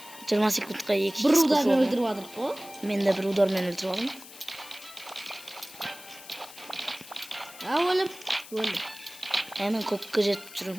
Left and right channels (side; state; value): left; noise; hiss, 17 dB below the sound